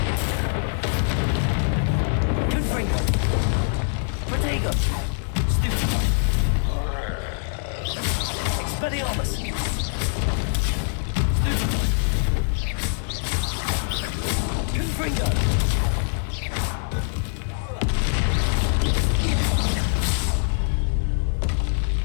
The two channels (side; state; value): right; silent; 60 dB below the other